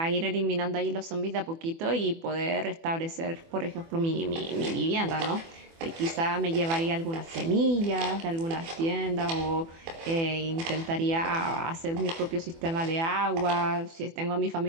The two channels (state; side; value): late; left; 24 ms